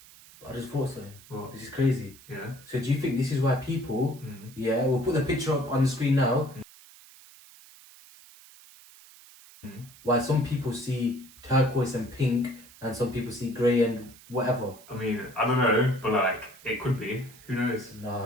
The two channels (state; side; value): noise; right; hiss, 22 dB below the sound